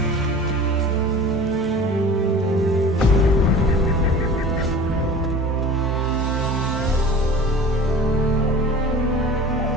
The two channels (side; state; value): both; normal; correlation 0.40